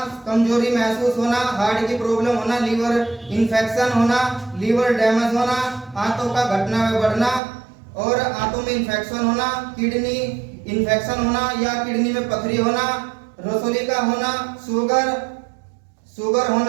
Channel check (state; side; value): drops out; left; at 7.4 s